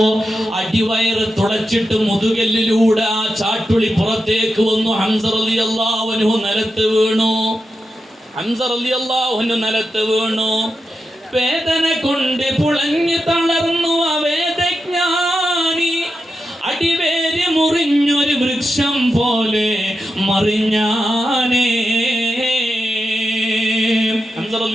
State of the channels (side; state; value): both; normal; correlation 0.88